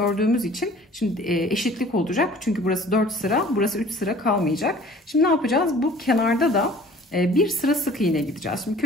için şimdi eşitlik olacak. Çünkü burası 4 sıra, burası 3 sıra kalmayacak. Şimdi ne yapacağız? Bu kenarda da bir sıra sık iğne gideceğiz. Şimdi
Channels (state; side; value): normal; both; correlation 0.49